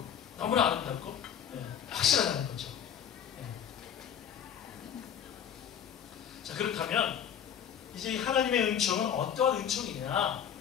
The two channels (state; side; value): quieter; right; 8.8 dB